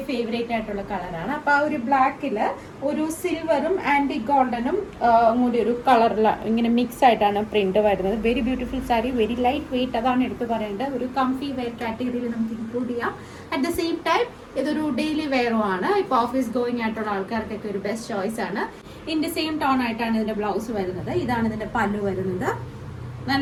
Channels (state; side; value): identical; both; correlation 1.00